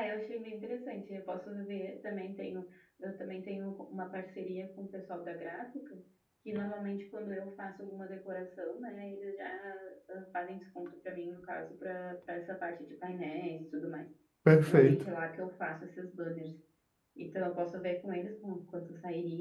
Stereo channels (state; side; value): identical; both; correlation 1.00